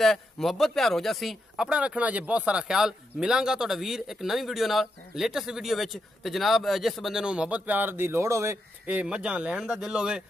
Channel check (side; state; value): both; normal; correlation 0.83